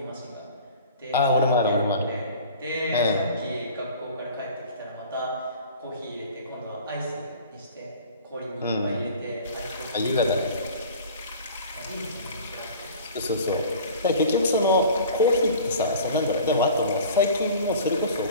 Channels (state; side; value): inverted; both; correlation -0.43